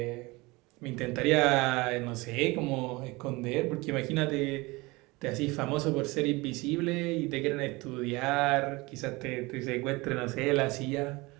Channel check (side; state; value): left; quieter; 23.4 dB